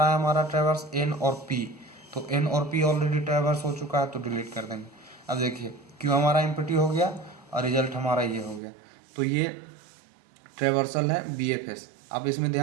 है हमारा ट्रैवर्स N और P, तो N और P ऑलरेडी ट्रैवर्स हो चुका है, तो डिलीट कर देंगे। अब देखिए Q हमारा एम्प्टी हो गया और रिजल्ट हमारा ये हो गया। तो ये ट्रैवर्सल है BFS। अब इसमें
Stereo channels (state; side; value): drops out; left; at 8.6 s